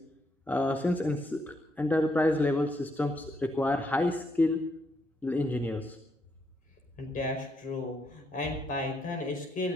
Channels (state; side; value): normal; both; correlation 0.76